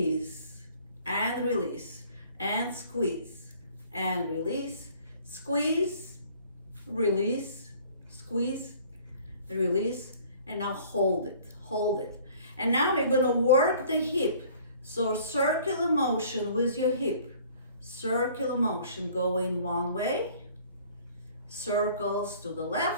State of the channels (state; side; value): inverted; both; correlation -0.53